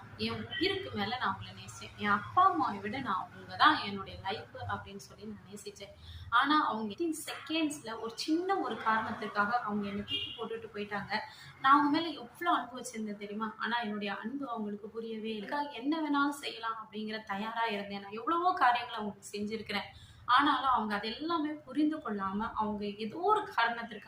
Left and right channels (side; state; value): both; identical; correlation 1.00